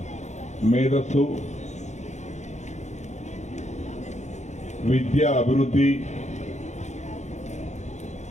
మేధస్సు, విద్యా అభివృద్ధి,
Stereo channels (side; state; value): right; late; 0.34 ms